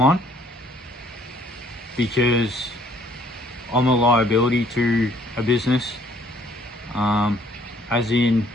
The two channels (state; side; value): normal; both; correlation 0.61